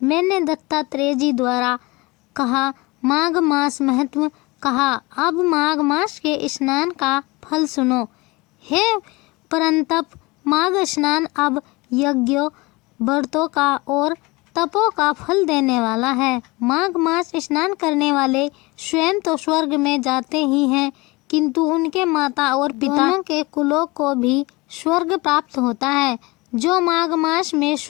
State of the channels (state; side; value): quieter; right; 23.8 dB